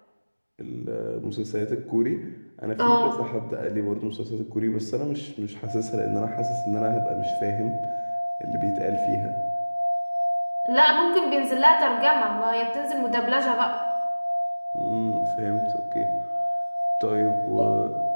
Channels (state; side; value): inverted; both; correlation -1.00